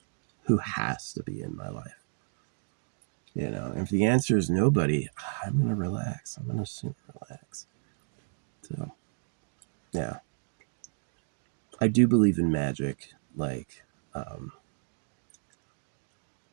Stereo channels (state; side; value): silent; left; digital silence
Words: who has to be in my life? You know, if the answer is nobody, I'm going to relax. I'm going to just relax. So, yeah. I do believe in magic. Like,